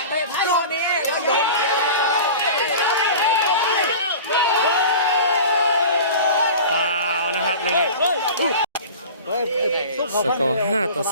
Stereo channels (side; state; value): both; inverted; correlation -0.37